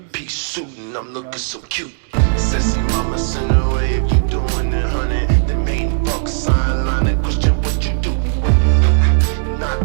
suit and I'm looking so cute. Sissy mama send away if you doing it, honey. The main fuck sign line and question what you do.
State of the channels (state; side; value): silent; left; digital silence